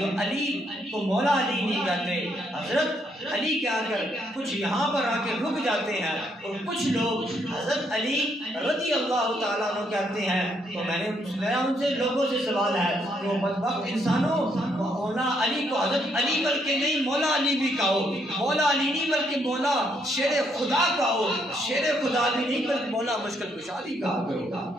علی کو مولا علی نہیں کہتے. حضرت علی کے آ کر کچھ یہاں پر آ کے رک جاتے ہیں اور کچھ لوگ حضرت علی رضی اللہ تعالیٰ عنہ کہتے ہیں. تو میرا ان سے لوگوں سے سوال ہے کہ وہ بدبخت انسانوں مولا علی کو حضرت علی بلکہ نہیں مولا علی بھی کہو, مولا علی نہیں بلکہ مولا شیر خدا کہو, شیر خدا بھی نہیں بلکہ مولا مشکل کشا بھی کہا کرو.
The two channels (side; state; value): both; normal; correlation 0.73